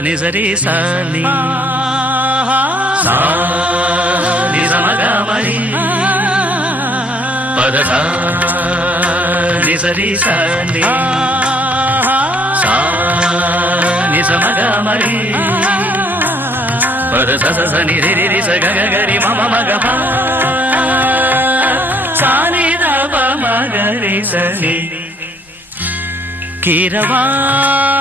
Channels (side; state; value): both; normal; correlation 0.64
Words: నిజరి సాని సా నిజమగ మరి పదస నిజరి సాని సా నిజమగ మరి పదస స ని రి రి స గ గ రి మ మ మ గ ప సా ని ద ప మ గ రి స ని